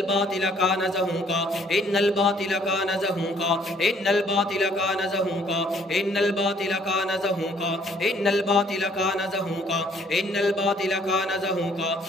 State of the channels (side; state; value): both; normal; correlation 0.62